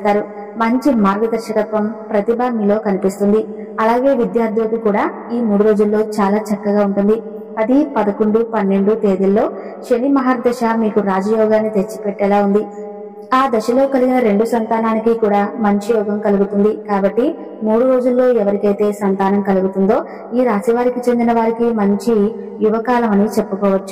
మంచి మార్గదర్శకత్వం ప్రతిభ మీలో కనిపిస్తుంది. అలాగే విద్యార్థులకు కూడా ఈ 3 రోజుల్లో చాలా చక్కగా ఉంటుంది. 10, 11, 12 తేదీల్లో శని మహర్దశ మీకు రాజయోగాన్ని తెచ్చిపెట్టేలా ఉంది. ఆ దశలో కలిగిన 2 సంతానానికి కూడా మంచి యోగం కలుగుతుంది. కాబట్టి 3 రోజుల్లో ఎవరికైతే సంతానం కలుగుతుందో ఈ రాశి వారికి చెందిన వారికి మంచి యువకాలం అని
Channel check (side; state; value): both; identical; correlation 1.00